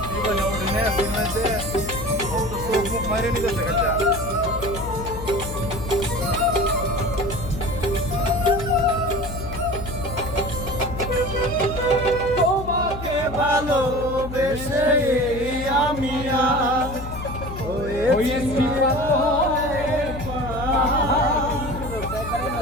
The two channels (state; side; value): noise; left; hum, 9 dB below the sound